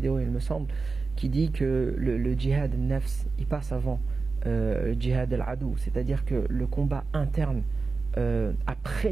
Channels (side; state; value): left; quieter; 4.2 dB